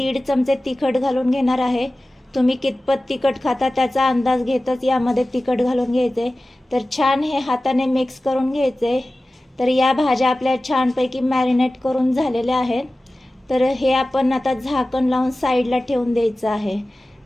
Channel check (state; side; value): normal; both; correlation 0.96